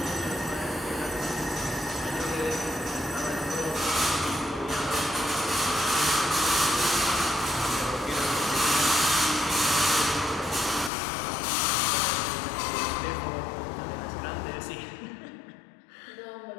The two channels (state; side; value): drops out; right; at 10.9 s